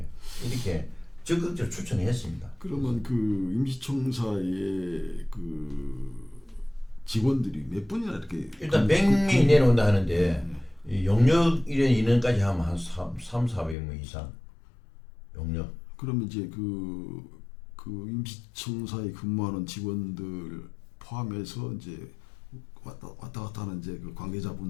이렇게 적극적으로 추천했습니다. 그러면 그 임시청사의 그 직원들이 몇 분이나 이렇게 일단 100명이 내려온다 하는데 이 용역 이런 인원까지 하면 한 300~400명 이상 용역. 그러면 이제 그 임시청사에 근무하는 직원들 포함해서 이제 왔다 갔다 하는 이제 그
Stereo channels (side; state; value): right; drops out; at 13.8 s